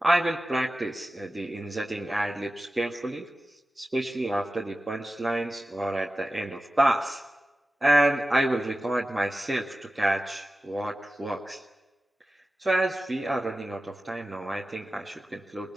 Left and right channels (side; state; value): both; normal; correlation 0.95